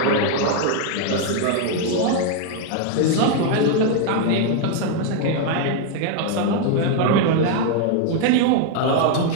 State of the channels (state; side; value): different; both; correlation 0.01